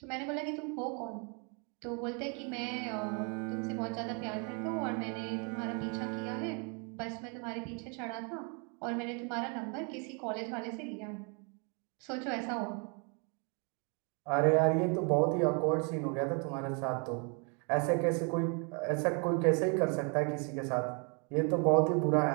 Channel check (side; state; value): left; quieter; 35.8 dB